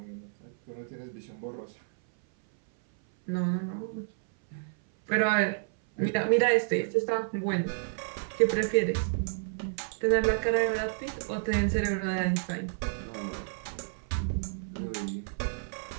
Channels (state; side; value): silent; left; 57 dB below the other